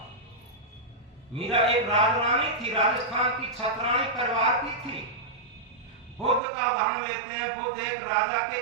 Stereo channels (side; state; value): left; drops out; at 6.4 s